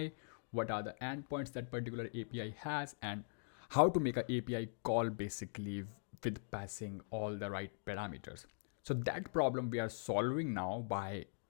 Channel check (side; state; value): right; silent; digital silence